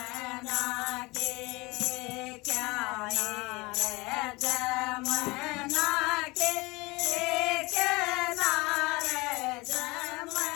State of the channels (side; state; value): right; quieter; 23.7 dB